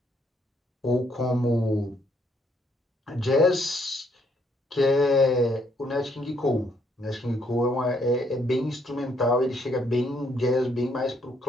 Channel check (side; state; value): both; normal; correlation 0.70